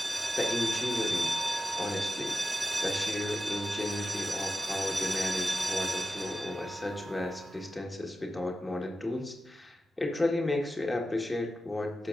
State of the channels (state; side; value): normal; both; correlation 0.92